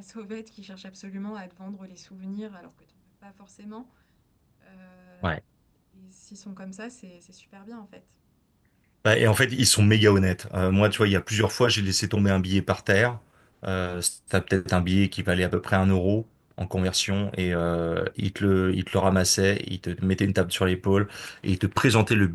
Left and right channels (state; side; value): identical; both; correlation 1.00